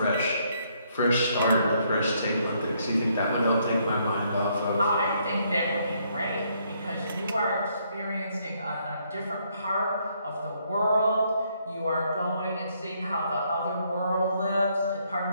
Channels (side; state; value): both; inverted; correlation -0.71